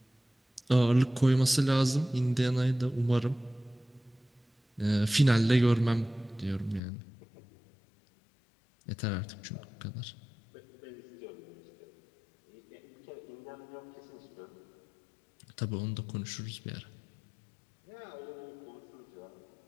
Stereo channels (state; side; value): drops out; right; at 6.8 s